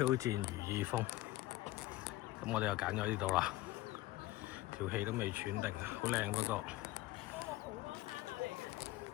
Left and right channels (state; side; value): quieter; right; 17.6 dB